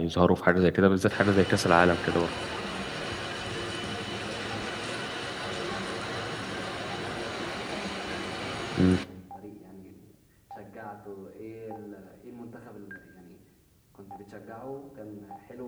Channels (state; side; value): identical; both; correlation 1.00